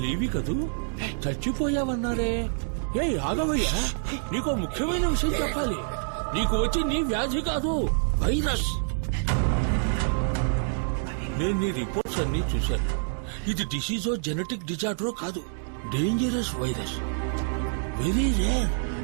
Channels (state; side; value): silent; left; 60 dB below the other